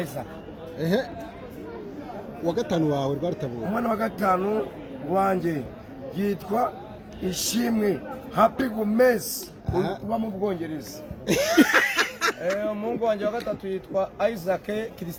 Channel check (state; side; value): identical; both; correlation 1.00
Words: Isaac. Wa gatanu wawe Rwarutabura. Umwana wa gatanu wanjye yitwa Ishimwe Happy Gomez uba mu Bwongereza. Umuhungu wanjye wa gatatu yitwa Isaac